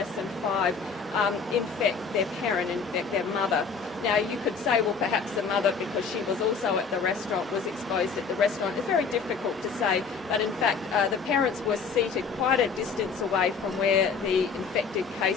than 5 infect their parent, infect their mother. Now, you could say, well, perhaps the mother, because she was also at the restaurant, was exposed at the restaurant. It's very difficult to say, but in fact, the parents were seated quite a distance away from where the infected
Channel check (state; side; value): quieter; right; 5.4 dB